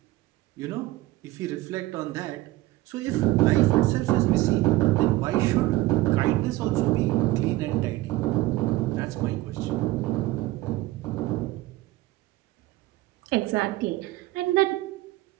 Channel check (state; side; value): quieter; left; 17.9 dB